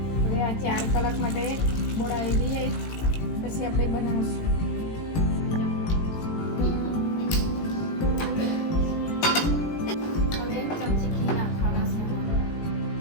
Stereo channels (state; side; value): late; right; 18 ms